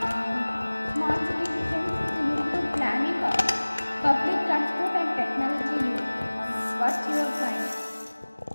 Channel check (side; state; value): both; inverted; correlation -1.00